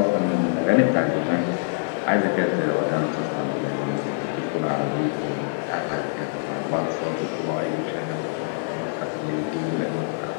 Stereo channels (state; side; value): silent; right; digital silence